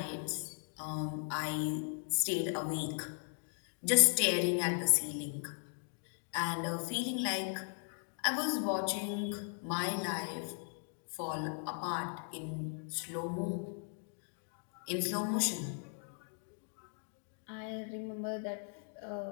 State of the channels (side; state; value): right; silent; 53 dB below the other